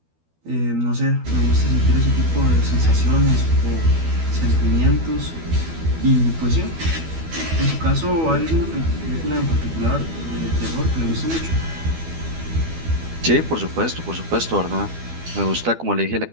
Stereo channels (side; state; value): left; late; 12 ms